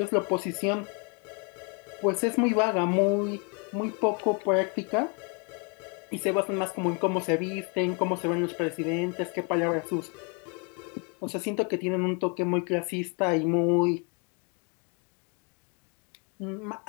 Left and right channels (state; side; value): quieter; right; 35.3 dB